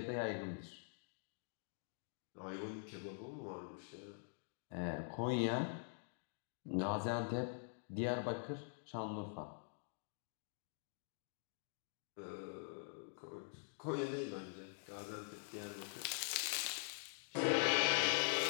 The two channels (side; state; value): right; silent; digital silence